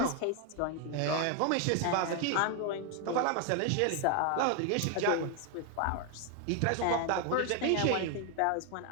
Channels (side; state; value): both; different; correlation 0.00